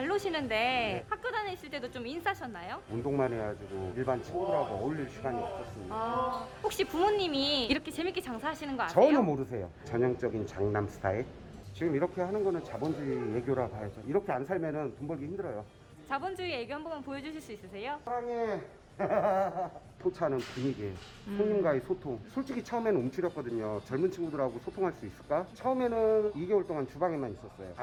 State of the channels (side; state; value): both; identical; correlation 1.00